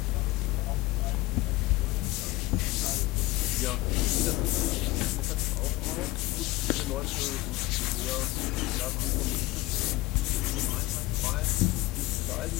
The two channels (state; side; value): quieter; right; 19.8 dB